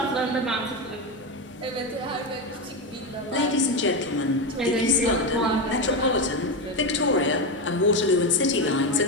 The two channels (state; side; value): normal; both; correlation 0.13